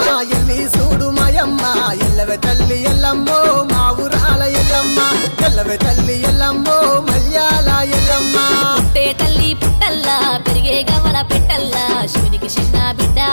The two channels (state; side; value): inverted; both; correlation -1.00